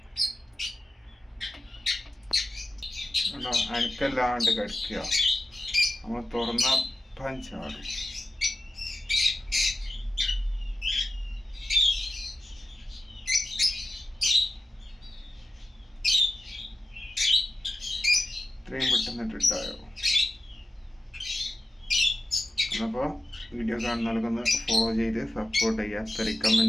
കേട്ടോ. അനക്കല്ലാണ്ട് കടിക്കുക. നമ്മൾ തുറന്ന പഞ്ചാടും. ഇത്രയും പെട്ടെന്നിട്ടുണ്ടായോ? അപ്പോൾ വീഡിയോ കാണുന്നവർക്കൊന്ന് ഫോളോ ചെയ്ത് സപ്പോർട്ട് ചെയ്യുക.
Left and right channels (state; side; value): normal; both; correlation 0.93